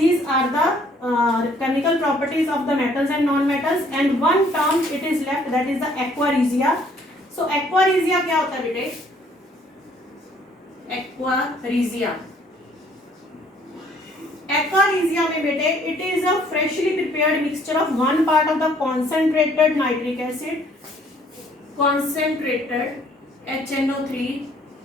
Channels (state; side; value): normal; both; correlation 0.61